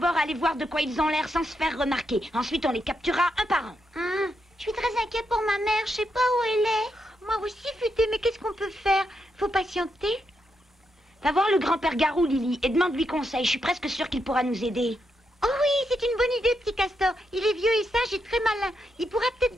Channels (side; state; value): both; normal; correlation 0.82